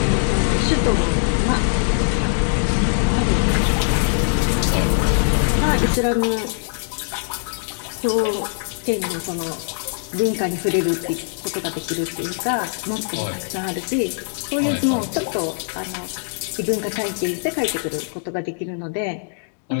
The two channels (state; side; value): silent; right; digital silence